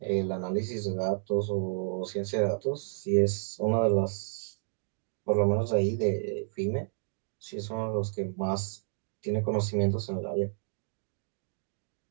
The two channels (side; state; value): left; silent; digital silence